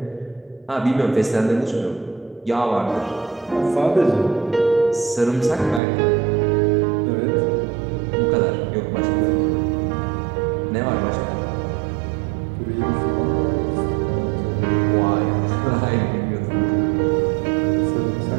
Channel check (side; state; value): left; drops out; at 5.8 s